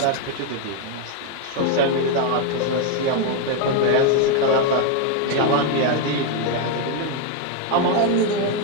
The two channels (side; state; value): both; different; correlation 0.01